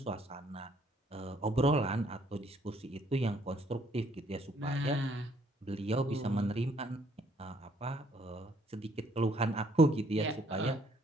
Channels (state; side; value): normal; both; correlation 0.65